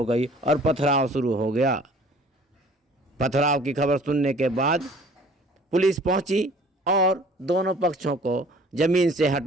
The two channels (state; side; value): normal; both; correlation 0.51